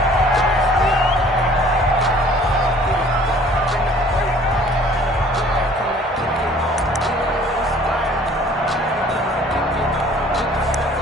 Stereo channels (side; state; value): both; normal; correlation 0.53